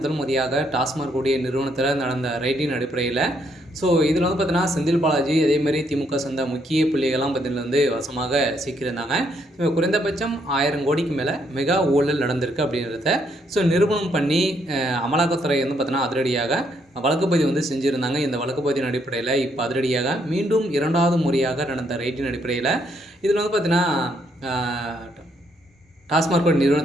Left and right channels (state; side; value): normal; both; correlation 0.73